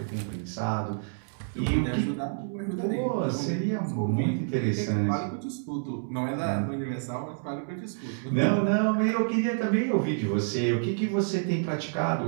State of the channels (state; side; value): silent; left; 59 dB below the other